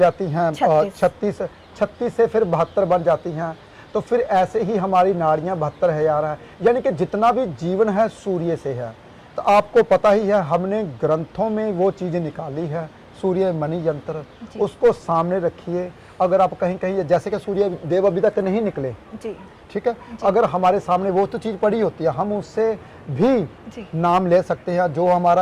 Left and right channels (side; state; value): both; identical; correlation 1.00